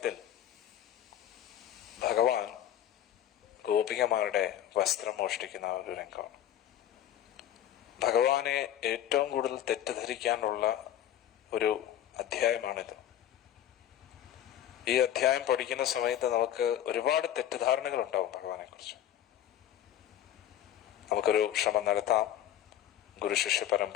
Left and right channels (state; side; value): quieter; right; 11.3 dB